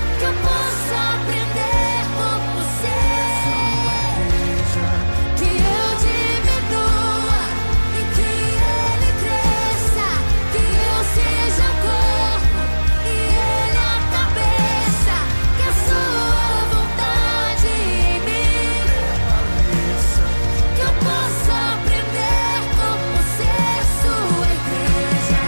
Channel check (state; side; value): inverted; both; correlation -1.00